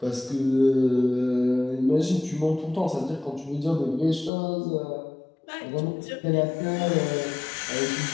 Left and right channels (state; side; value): drops out; right; at 4.3 s